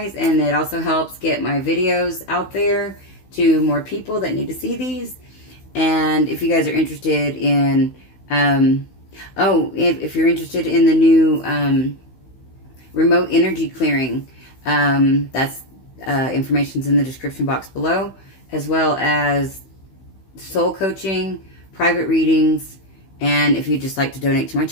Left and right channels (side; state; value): right; late; 16 ms